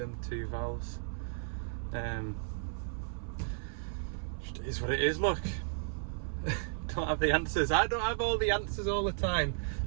two valves. Just is what it is, look. Don't have the answers. I don't have all the answers all the time.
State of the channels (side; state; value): left; silent; 55 dB below the other